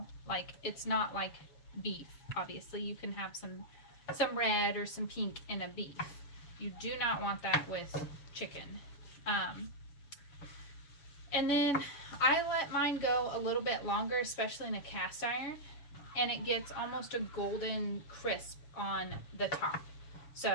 Like, it's not like beef. Obviously, you can have some red or some pink in a beef. You do not want that with chicken. And then I let mine go a little bit longer, especially in a cast iron, and it gets almost a golden crisp on the top.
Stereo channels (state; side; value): late; right; 7.0 ms